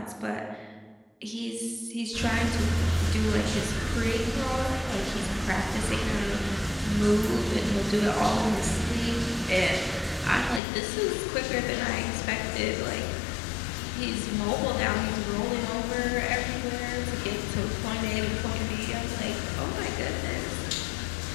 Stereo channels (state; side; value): drops out; right; at 10.6 s